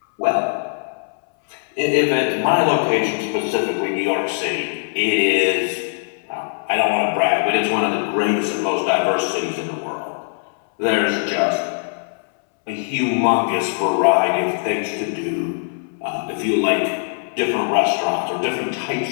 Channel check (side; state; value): right; silent; 65 dB below the other